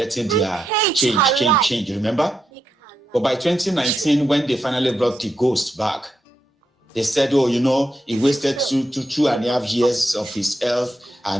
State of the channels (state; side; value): normal; both; correlation 0.84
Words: their change, remember? But by 2019, when they finally brought the ghost back, they said, oh, he wasted 2.5 years of his health